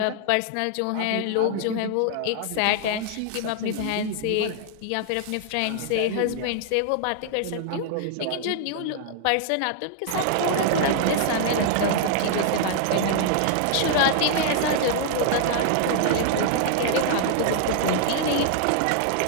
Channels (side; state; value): both; different; correlation 0.00